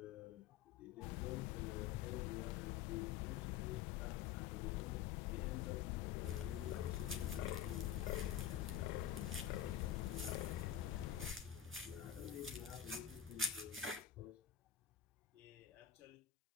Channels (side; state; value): right; quieter; 9.9 dB